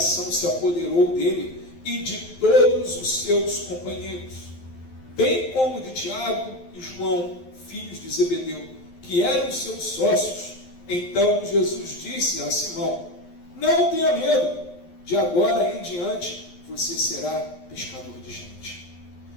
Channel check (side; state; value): right; late; 11 ms